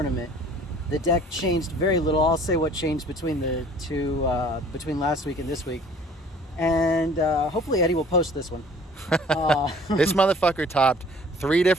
The deck changed very little. I'll say what changed between the two, between last week and this week. And hopefully Eddie will post this one. This motherfucker topped 3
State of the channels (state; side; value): normal; both; correlation 0.52